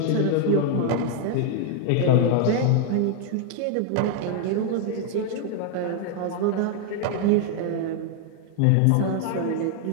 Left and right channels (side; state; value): both; different; correlation 0.00